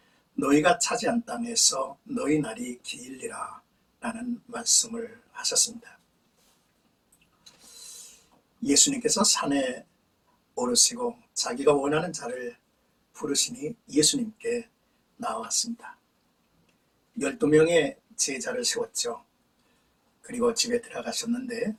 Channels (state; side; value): identical; both; correlation 1.00